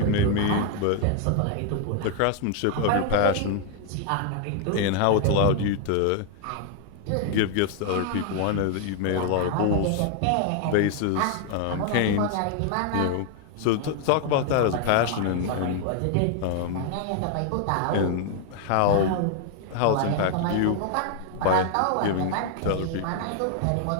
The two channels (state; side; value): different; both; correlation 0.00